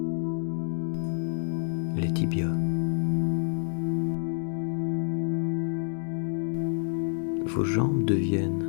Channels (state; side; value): silent; right; digital silence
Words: les tibias. Vos jambes deviennent